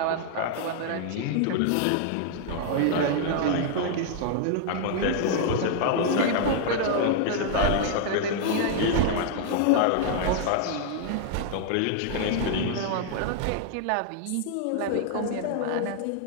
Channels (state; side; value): different; both; correlation -0.01